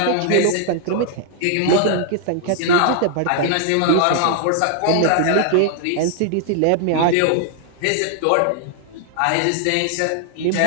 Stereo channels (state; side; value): different; both; correlation 0.00